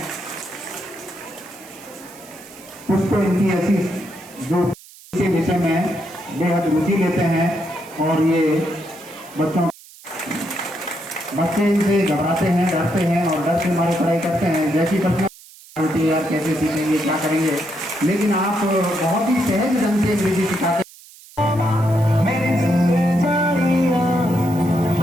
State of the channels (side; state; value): right; noise; hiss, 21 dB below the sound